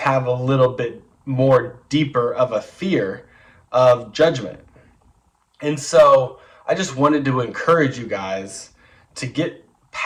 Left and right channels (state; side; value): identical; both; correlation 1.00